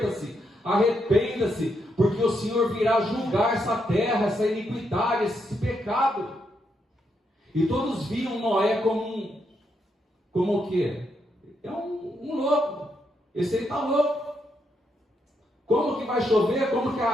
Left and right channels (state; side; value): normal; both; correlation 0.79